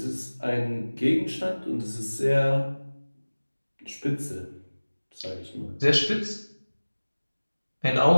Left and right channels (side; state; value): both; inverted; correlation -1.00